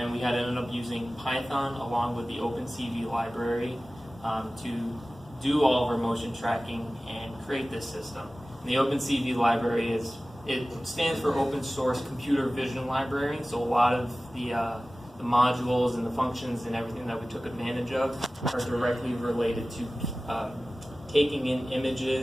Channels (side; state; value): both; normal; correlation 0.97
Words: we had ended up using Python along with the OpenCV library to do all of our motion tracking and create this system. And the OpenCV library stands for Open Source Computer Vision Library. So a lot of the modules and the functions and everything that we took advantage of are directly related to taking in